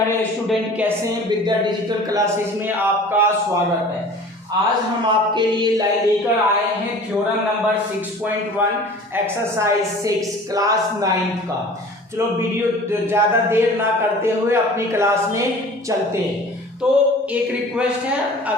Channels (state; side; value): normal; both; correlation 0.44